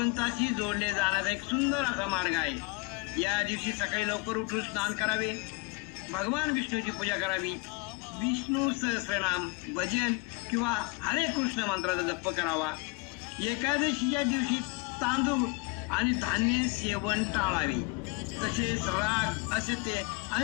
जोडले जाण्याचा एक सुंदर असा मार्ग आहे. या दिवशी सकाळी लवकर उठून स्नान करावे, भगवान विष्णूची पूजा करावी, विष्णू सहस्रनाम, भजन किंवा हरे कृष्ण मंत्राचा जप करावा. एकादशीच्या दिवशी तांदूळ आणि धान्य सेवन टाळावे. तसेच राग, असत्य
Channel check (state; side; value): quieter; right; 26.1 dB